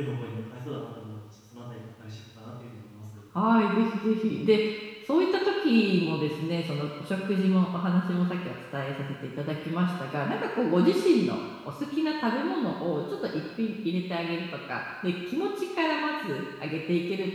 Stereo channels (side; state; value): both; identical; correlation 1.00